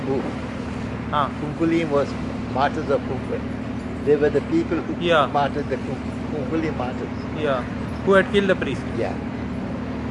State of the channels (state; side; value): identical; both; correlation 1.00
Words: Ah. Kunkuli was martyrs of Kunkul. They were the people who Yeah. martyred the Kunkuli martyrs. Yeah. Who had killed the priest. Yeah.